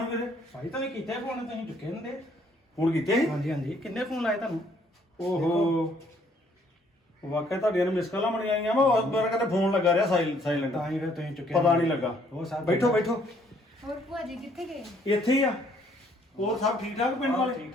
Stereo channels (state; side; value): normal; both; correlation 0.65